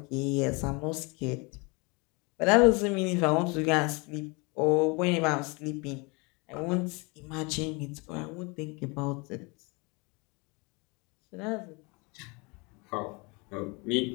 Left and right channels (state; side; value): quieter; right; 29.1 dB